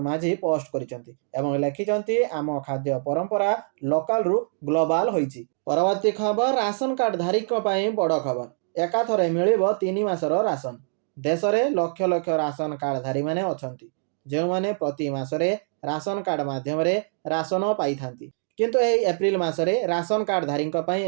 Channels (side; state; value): left; silent; digital silence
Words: माझी पोस्ट करिसंती एवं लिखिसंती आम खाद्य परंपरा लोकल रु ग्लोबल होईची। परवर्ती खबर राशन कार्ड धारीक पई बड़ खबर। एकाथरे मिलिबो 3 मासर राशन। देश रे लक्ष लक्ष राशन कार्ड धारी माने अछंती जे माने प्रति मासरे राशन कार्ड माध्यम रे राशन पाई थांती। किंतु एही एप्रिल मासरे राशन कार्ड धारीक पई